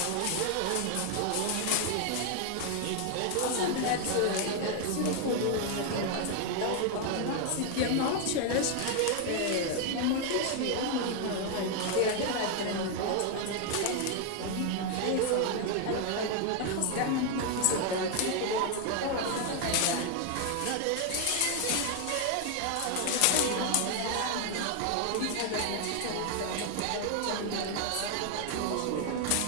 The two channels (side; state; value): both; different; correlation 0.01